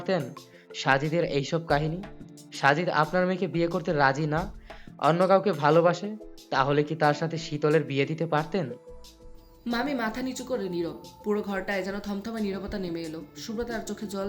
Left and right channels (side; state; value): both; identical; correlation 1.00